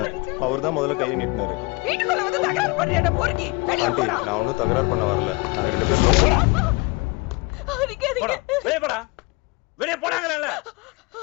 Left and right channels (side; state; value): right; quieter; 26.2 dB